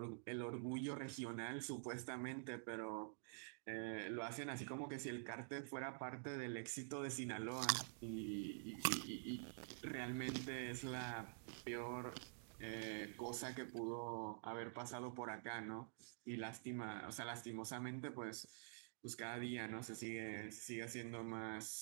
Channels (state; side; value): silent; left; digital silence